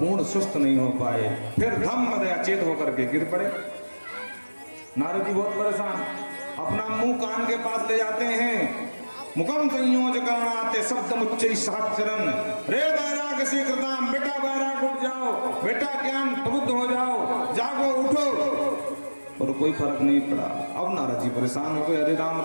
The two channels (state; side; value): inverted; both; correlation -1.00